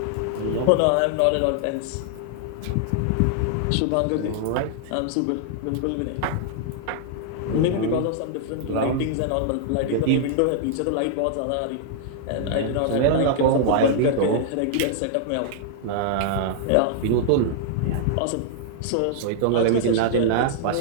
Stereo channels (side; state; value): both; different; correlation -0.01